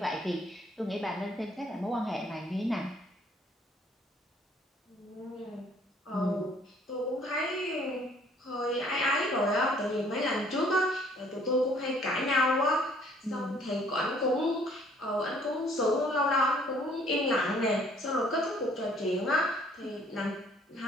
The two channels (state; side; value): normal; both; correlation 0.60